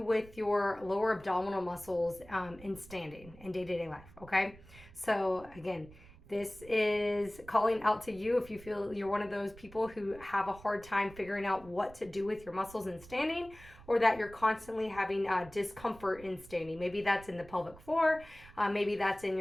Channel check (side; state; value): right; noise; rumble, 20 dB below the sound